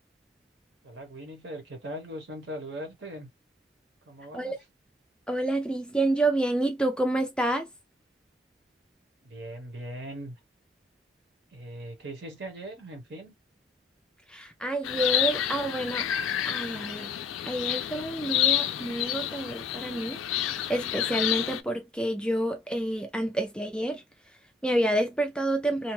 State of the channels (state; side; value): normal; both; correlation 0.62